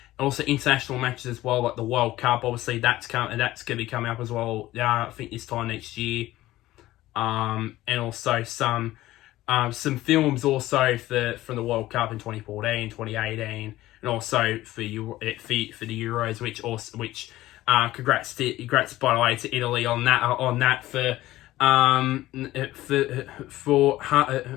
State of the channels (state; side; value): quieter; right; 16.1 dB